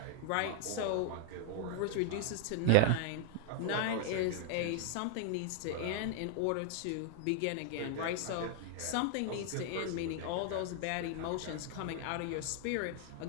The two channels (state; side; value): different; both; correlation 0.00